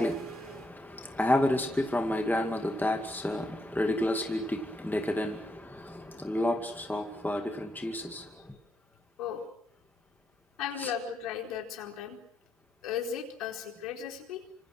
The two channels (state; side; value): normal; both; correlation 0.79